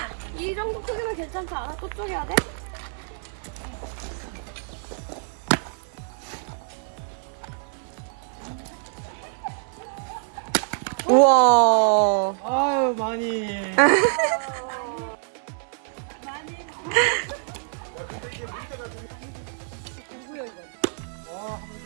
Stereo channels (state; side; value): silent; left; digital silence